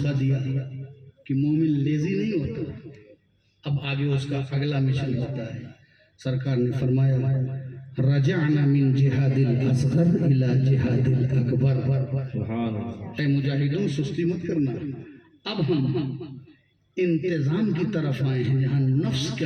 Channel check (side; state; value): both; identical; correlation 1.00